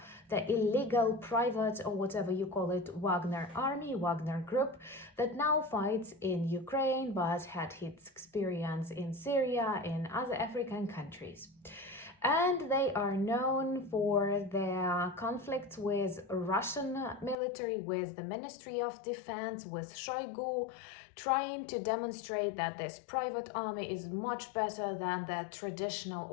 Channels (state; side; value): drops out; right; at 17.4 s